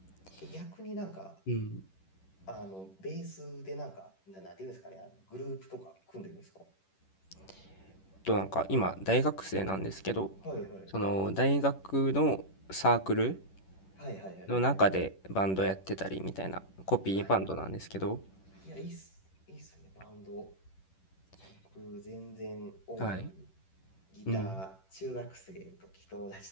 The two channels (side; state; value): right; late; 11 ms